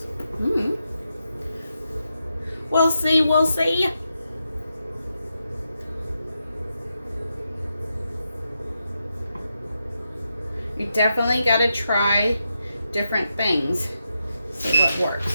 We'll see. You definitely got to try different things. See what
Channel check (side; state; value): both; inverted; correlation -0.86